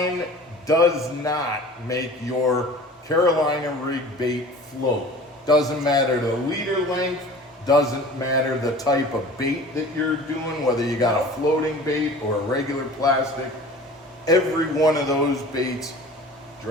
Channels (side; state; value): both; normal; correlation 0.42